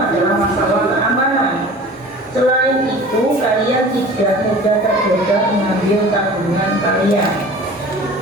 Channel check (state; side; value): normal; both; correlation 0.42